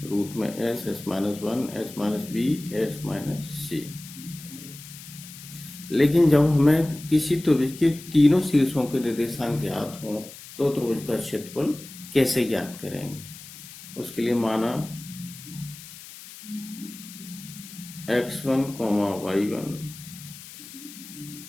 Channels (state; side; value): noise; left; hiss, 16 dB below the sound